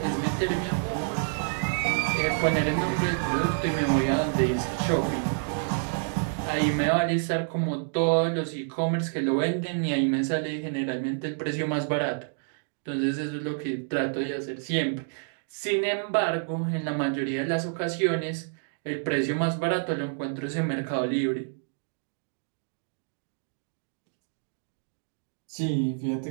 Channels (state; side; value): silent; left; digital silence